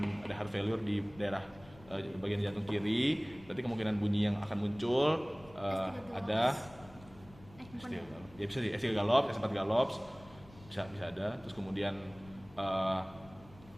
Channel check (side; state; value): left; noise; rumble, 22 dB below the sound